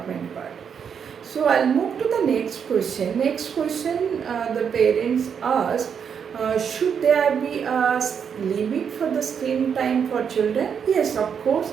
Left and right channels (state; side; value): quieter; left; 7.2 dB